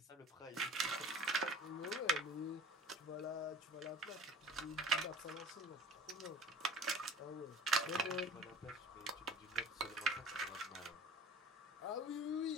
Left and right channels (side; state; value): both; normal; correlation 0.43